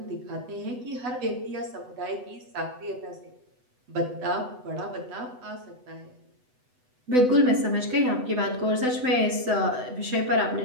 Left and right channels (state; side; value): late; left; 8.0 ms